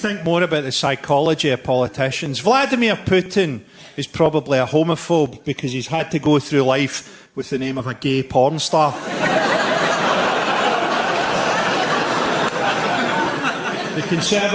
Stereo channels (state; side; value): identical; both; correlation 1.00